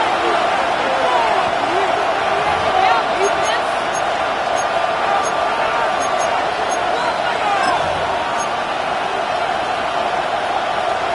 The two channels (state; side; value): identical; both; correlation 1.00